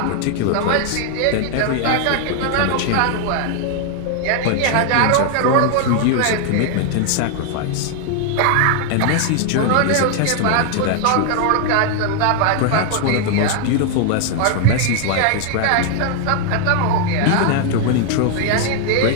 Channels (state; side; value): different; both; correlation 0.00